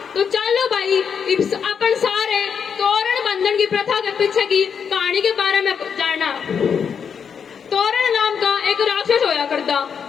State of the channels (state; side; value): quieter; right; 6.9 dB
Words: तो चलो भाई अपन सारे तोरण बंधन की प्रथा के पीछे की कहानी के बारे में जानना। तोरण नाम का एक राक्षस होया करता,